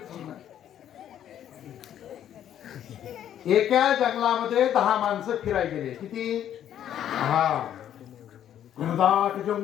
एका जंगलामध्ये 10 माणसं फिरायला गेले. किती? 10. घनदाट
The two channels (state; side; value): quieter; right; 10.5 dB